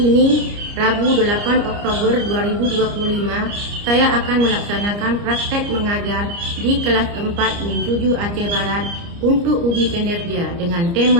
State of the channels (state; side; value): late; left; 29 ms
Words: Rabu 8 Oktober 2025, saya akan melaksanakan praktek mengajar di kelas 4 Min 7 Aceh Barat untuk uji kinerja dengan